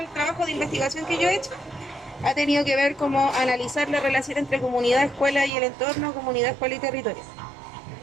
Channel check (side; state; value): left; drops out; at 5.5 s